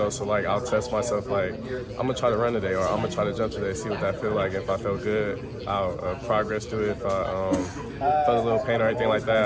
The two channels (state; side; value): identical; both; correlation 1.00